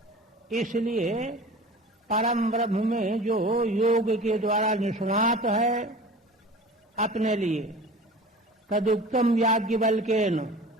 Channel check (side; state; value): both; normal; correlation 0.39